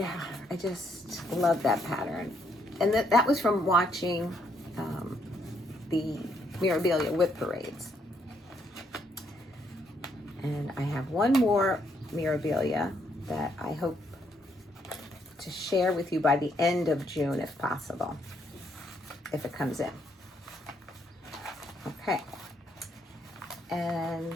I just love that pattern. And that was from watching the Mirabilia Whip Parades. And I have one more Mirabilia that I hope to share with you by the end of June, if possible, if it comes in. Okay. And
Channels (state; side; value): normal; both; correlation 0.73